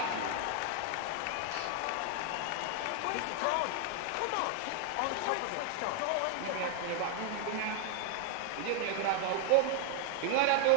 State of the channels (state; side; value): different; both; correlation 0.00